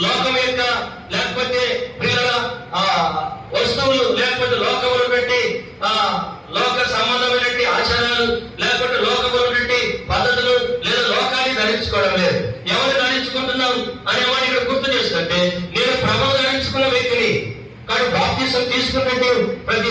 లోకం యొక్క లేకపోతే ప్రియుల వస్తువులు లేకపోతే లోకములు పెట్టి లోక సంబంధమైనటువంటి ఆచారాలు లేకపోతే లోకములు పెట్టి పద్ధతులు లేదా లోకాన్ని ధరించుకోవడం లేదు. ఎవరు ధరించుకుంటున్నాం అనే వాడిని ఇక్కడ గుర్తు చేస్తుంటే నేను ప్రభువు ధరించుకున్న వ్యక్తిని. కాబట్టి బాప్తిసం తీసుకున్నట్టు ప్రతి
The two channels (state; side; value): identical; both; correlation 1.00